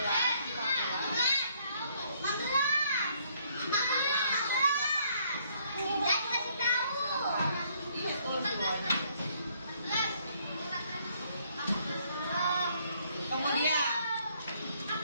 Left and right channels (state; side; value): inverted; both; correlation -0.67